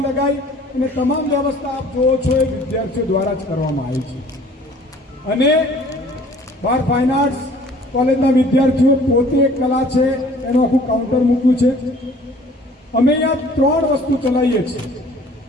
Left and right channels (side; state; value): both; normal; correlation 0.53